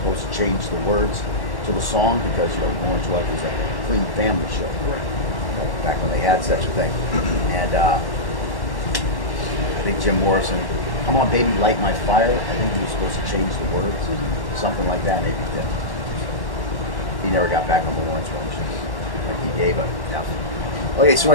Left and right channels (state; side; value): late; right; 1.1 ms